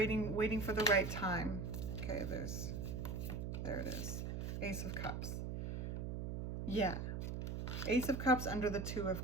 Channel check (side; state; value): right; noise; hum, 3 dB below the sound